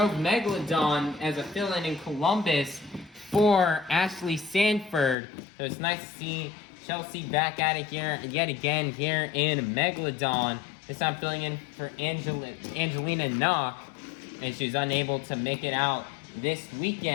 Megalodon as a fill-in in Columbus for Ashley Sanford. So it's nice to see Chelsea back at it here yet again here in Megalodon. This time filling in for Angelina Nock, and she was unable to make it out this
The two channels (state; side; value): drops out; right; at 5.2 s